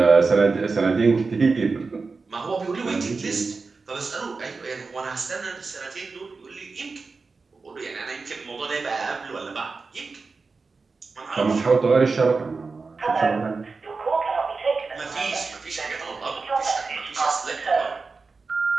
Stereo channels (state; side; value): quieter; left; 4.3 dB